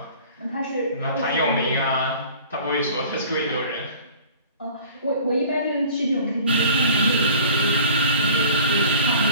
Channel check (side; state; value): both; inverted; correlation -0.46